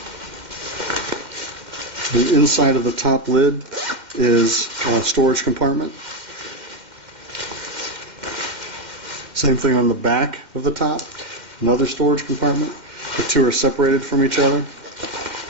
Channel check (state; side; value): late; left; 2.1 ms